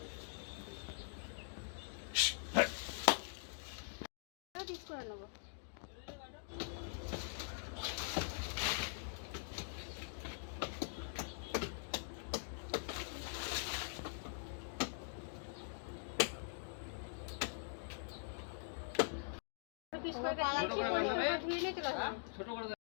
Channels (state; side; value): silent; right; digital silence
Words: পিস করে নেবো।